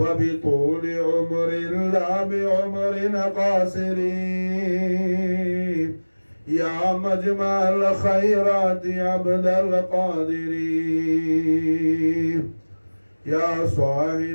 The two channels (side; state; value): both; inverted; correlation -1.00